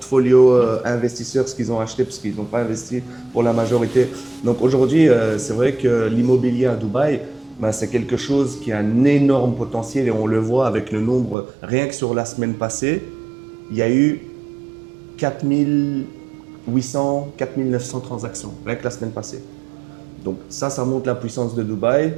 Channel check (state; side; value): drops out; left; at 11.4 s